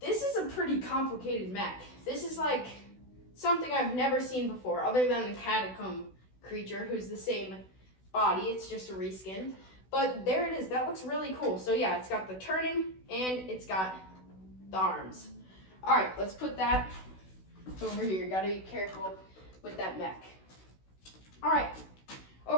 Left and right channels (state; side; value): late; right; 16 ms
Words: is a pretty complicated Mech. This is like something I've never seen before other than the catacomb creature who's the same body. It's just a reskin. But there it is. That looks really cool. So yeah, it's got the turning and it's got the arms. All right, let's put that over here. Gotta be careful with that Mech. All right,